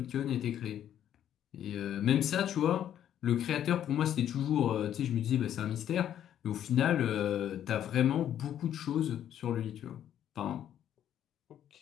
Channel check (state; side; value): quieter; right; 10.5 dB